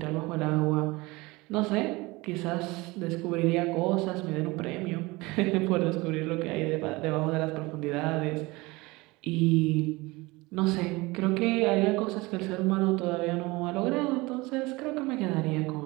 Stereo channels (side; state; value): left; quieter; 22.7 dB